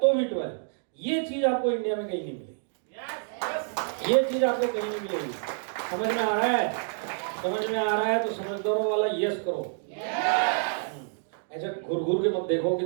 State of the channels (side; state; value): left; silent; digital silence